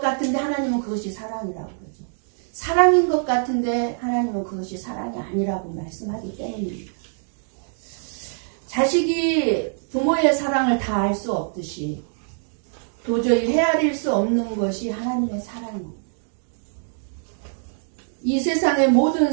하나님은 그것이 사랑이라고 그러죠. 사랑인 것 같은데 하나님은 그것이 사랑이 아니라고 말씀하기 때문입니다. 자식이 부모의 사랑을 다 알 수 없듯이 도저히 헤아릴 수 없는 것이 하나님의 사랑입니다. 이 세상의 모든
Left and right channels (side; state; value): left; silent; digital silence